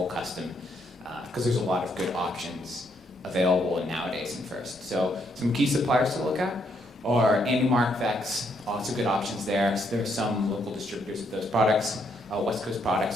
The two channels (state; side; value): normal; both; correlation 0.74